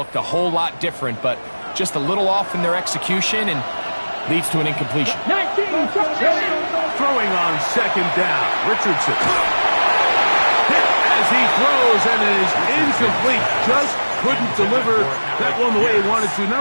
a whole lot different, but just a little off in their execution and leads to an incompletion. Throwing on second down, Richardson. Hit as he throws, and it is incomplete. Just couldn't deliver that one the way he wanted to.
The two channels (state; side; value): inverted; both; correlation -1.00